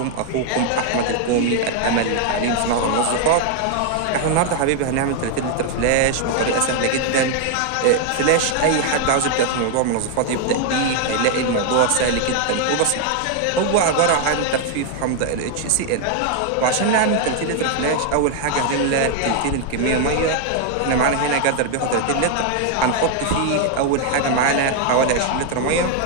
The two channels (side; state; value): both; different; correlation 0.00